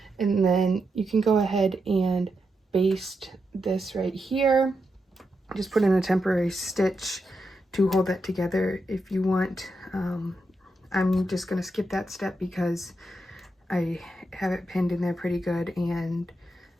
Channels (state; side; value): normal; both; correlation 0.85